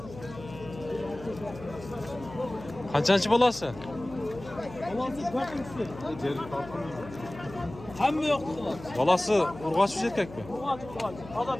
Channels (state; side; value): noise; left; hum, 15 dB below the sound